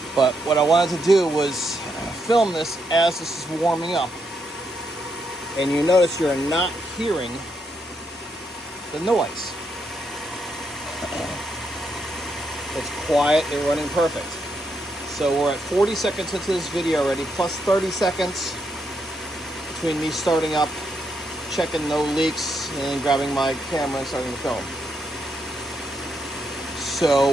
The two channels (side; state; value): both; normal; correlation 0.78